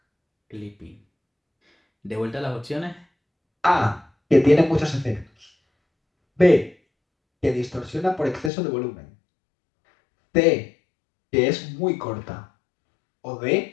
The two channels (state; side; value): drops out; right; at 8.5 s